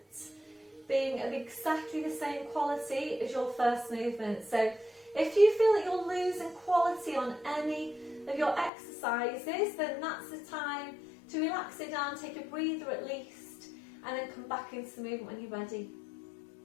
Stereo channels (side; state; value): right; drops out; at 8.7 s